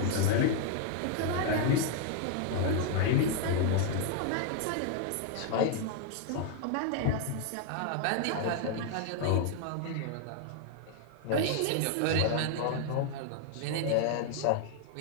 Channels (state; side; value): different; both; correlation 0.00